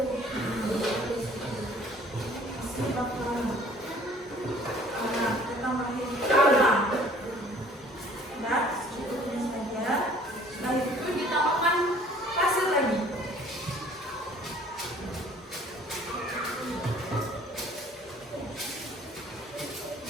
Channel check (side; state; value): both; normal; correlation 0.54